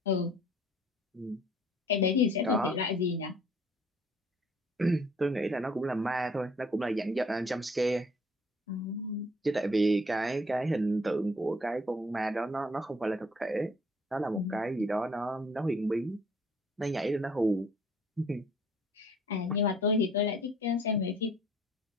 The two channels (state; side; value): normal; both; correlation 0.58